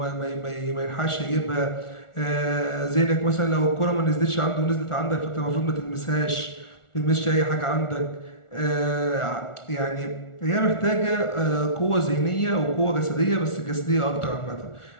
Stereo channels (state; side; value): late; right; 1.4 ms